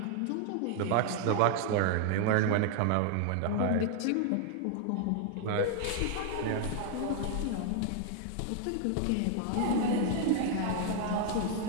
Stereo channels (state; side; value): different; both; correlation 0.00